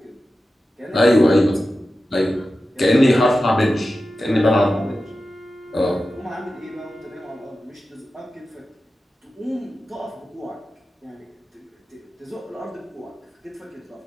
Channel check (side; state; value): both; normal; correlation 0.93